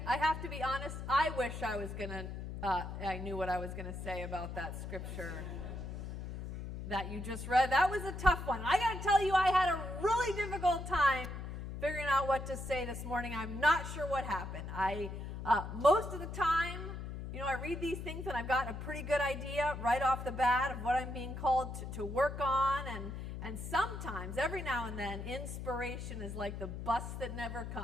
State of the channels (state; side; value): noise; left; hum, 7 dB below the sound